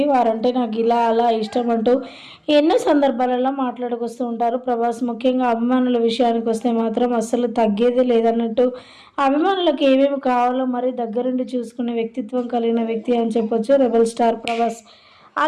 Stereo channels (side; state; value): both; identical; correlation 1.00